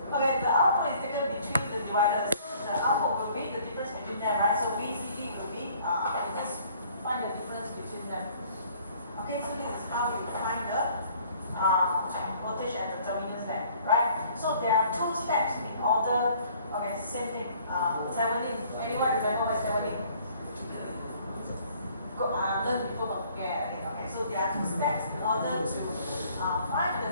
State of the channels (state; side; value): inverted; both; correlation -0.58